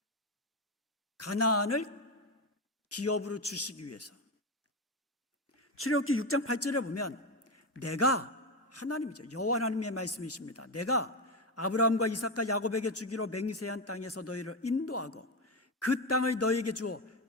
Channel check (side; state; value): both; normal; correlation 0.13